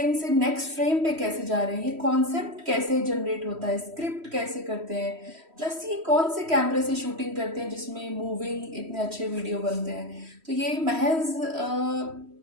से नेक्स्ट फ्रेम पे कैसे जा रहे हैं, ये कॉन्सेप्ट कैसे जनरेट होता है, स्क्रिप्ट कैसे करते हैं, प्लस ये कौन से कैमरे से शूटिंग करते हैं जिसमें मूविंग इतने अच्छे वीडियो बनते हैं। तो ये महज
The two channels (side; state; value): left; late; 3.1 ms